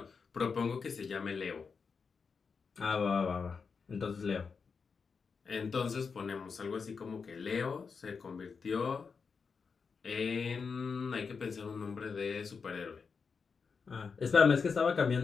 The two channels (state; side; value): quieter; right; 5.4 dB